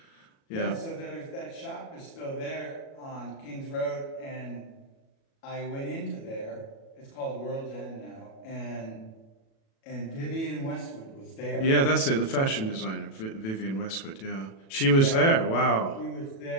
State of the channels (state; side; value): late; right; 37 ms